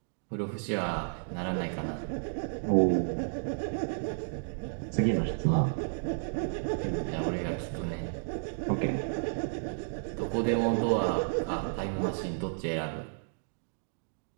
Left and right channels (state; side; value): silent; left; digital silence